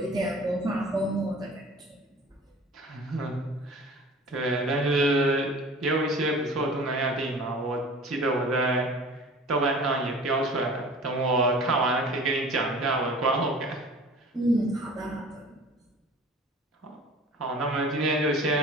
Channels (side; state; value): both; normal; correlation 0.43